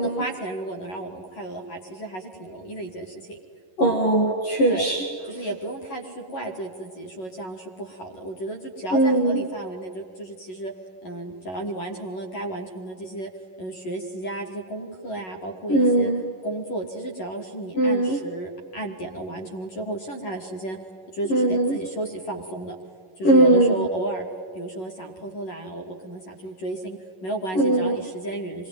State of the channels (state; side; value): late; right; 11 ms